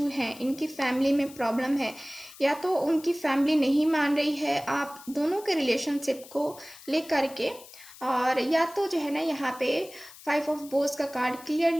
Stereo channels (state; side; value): noise; left; hiss, 19 dB below the sound